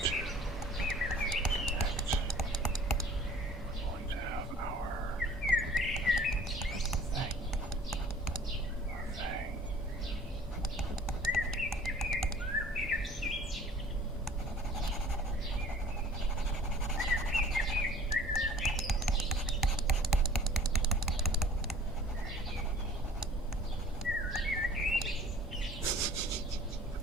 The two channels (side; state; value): both; normal; correlation 0.51